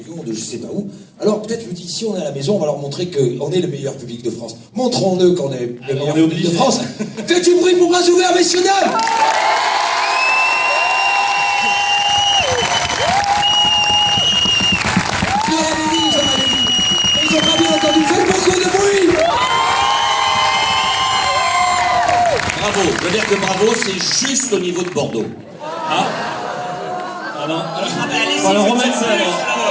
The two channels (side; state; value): both; identical; correlation 1.00